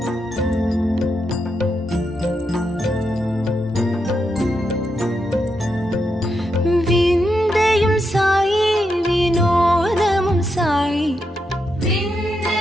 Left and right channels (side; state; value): both; normal; correlation 0.83